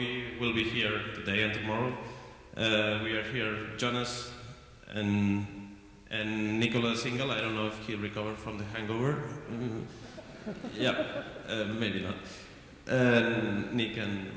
will be here today and tomorrow. We are here, Jonas and Nicolas Single. I don't know if he recovered from the hangover. Yeah, maybe not. Nick and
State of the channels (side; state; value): both; identical; correlation 1.00